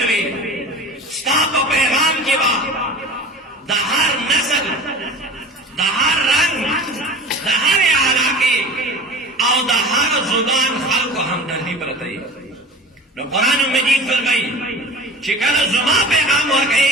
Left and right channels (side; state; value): both; normal; correlation 0.37